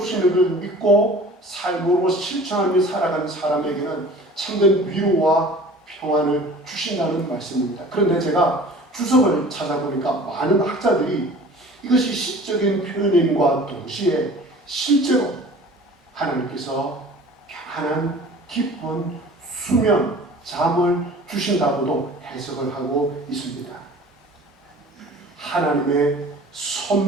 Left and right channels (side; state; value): both; normal; correlation 0.45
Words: 것을 믿고 삶으로 실천하며 살아가는 사람에게는 참된 위로와 평안을 주신다는 말씀입니다. 그런데 제가 주석을 찾아보니까 많은 학자들이 이것이 시적인 표현임과 동시에 실제로 하나님께서 평안한 깊은 수면, 잠을 주신다고도 해석을 하고 있습니다. 하나님의